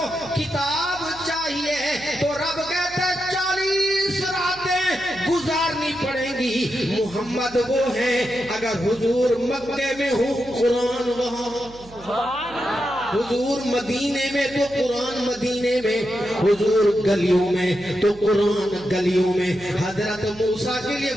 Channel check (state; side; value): noise; right; hum, 21 dB below the sound